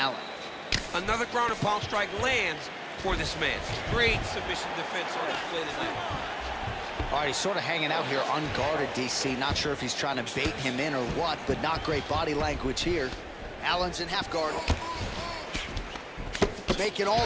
Another ground and pound strike lands for this man. Great submission defense on display tonight. All right, he's sort of hanging out here unguarded, DC. Not sure if he's trying to bait him in or what, but not great body language here. Allen's in half guard. Making all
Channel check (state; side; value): identical; both; correlation 1.00